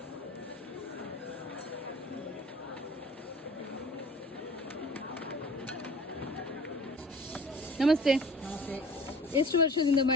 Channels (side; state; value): both; normal; correlation 0.45